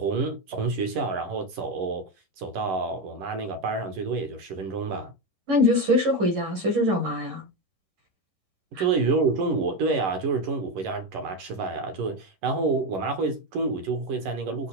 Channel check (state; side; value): late; left; 11 ms